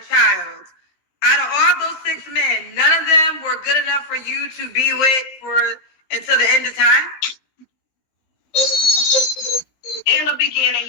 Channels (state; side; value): late; right; 15 ms